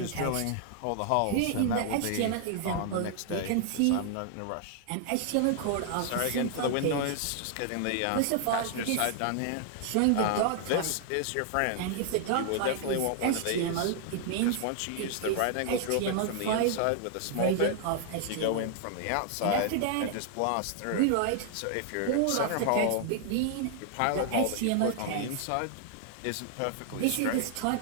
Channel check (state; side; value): different; both; correlation 0.00